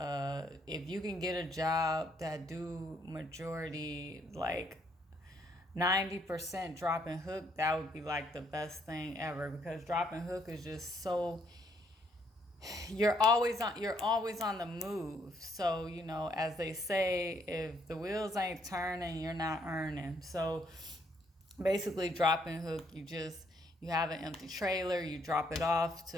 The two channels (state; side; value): normal; both; correlation 0.70